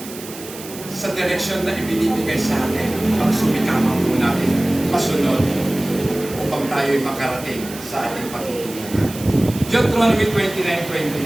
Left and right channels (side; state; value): right; noise; hiss, 14 dB below the sound